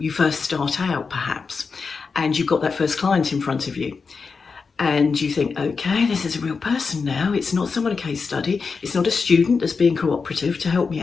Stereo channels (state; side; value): quieter; right; 5.0 dB